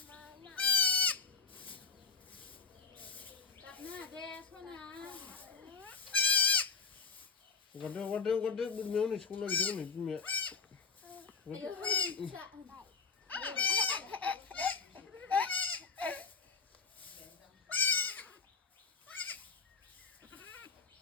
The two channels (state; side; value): quieter; right; 5.1 dB